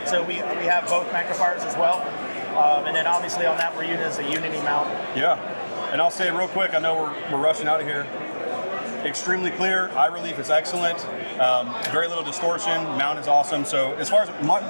So we have both magnifiers as well. And then obviously on that we're using as a Unity mount. And I'll say real quick, I know we're rushing out of here. Extremely clear, eye relief is excellent, very little distortion, mount is awesome. So as far as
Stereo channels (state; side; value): inverted; both; correlation -1.00